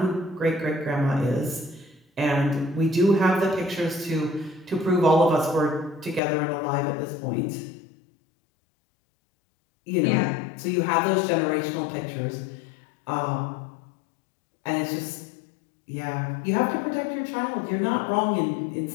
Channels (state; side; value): drops out; right; at 6.2 s